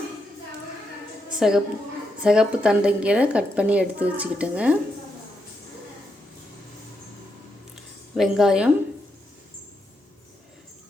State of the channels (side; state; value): both; normal; correlation 0.82